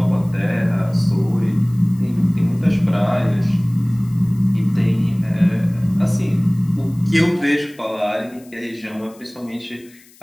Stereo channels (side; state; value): left; noise; hiss, 27 dB below the sound